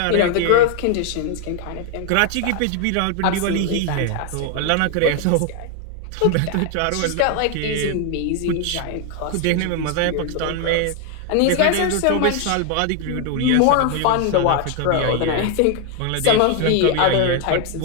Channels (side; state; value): both; different; correlation 0.01